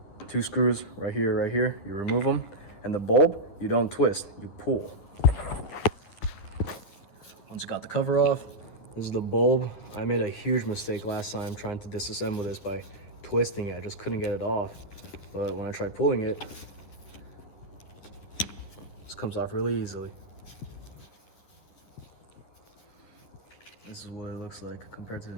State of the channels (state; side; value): late; right; 10 ms